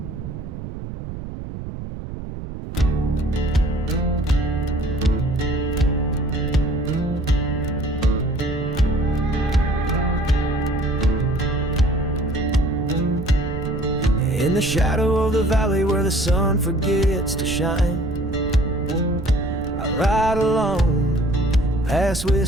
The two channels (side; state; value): right; noise; rumble, 9 dB below the sound